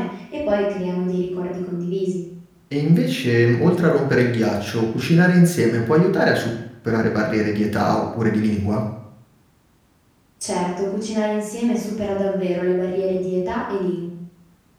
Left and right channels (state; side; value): identical; both; correlation 1.00